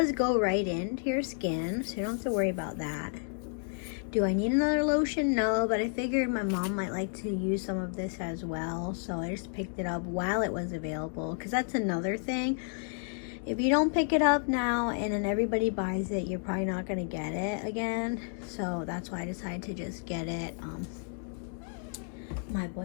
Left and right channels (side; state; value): right; silent; 57 dB below the other